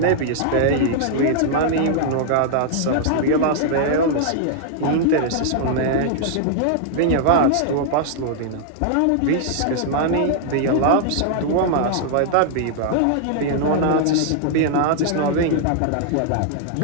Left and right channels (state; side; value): different; both; correlation -0.01